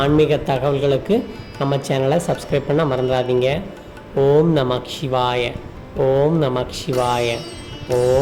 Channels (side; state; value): both; identical; correlation 1.00